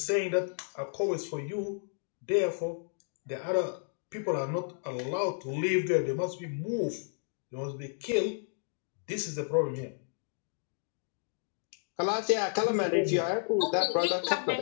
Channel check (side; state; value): right; silent; digital silence